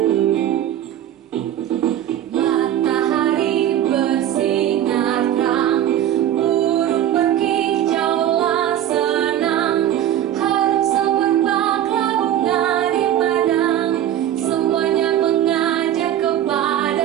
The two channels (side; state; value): left; quieter; 11.4 dB